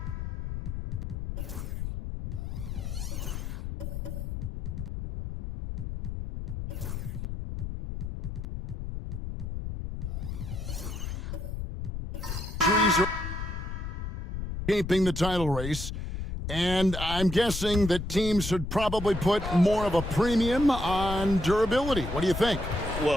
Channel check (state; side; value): noise; left; rumble, 6 dB below the sound